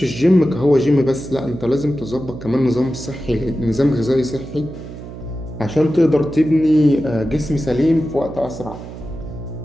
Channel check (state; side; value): noise; right; hum, 12 dB below the sound